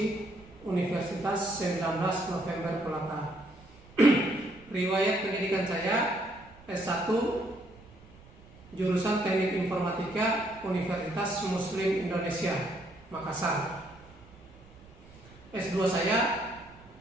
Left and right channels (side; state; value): right; noise; rumble, 23 dB below the sound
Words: Universitas 19 November Kolaka. Riwayat pendidikan saya S1, jurusan Teknik Informatika, Universitas Muslim Indonesia, Makassar. S2 saya